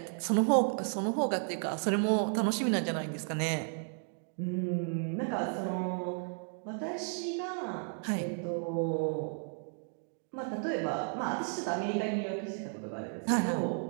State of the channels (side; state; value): left; silent; 55 dB below the other